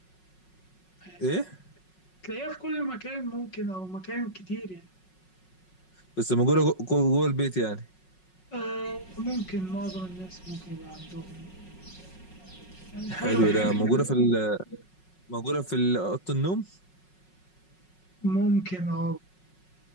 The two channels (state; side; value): late; right; 5.4 ms